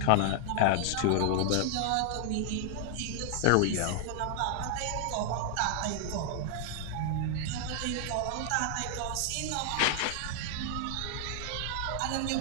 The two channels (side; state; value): both; different; correlation 0.00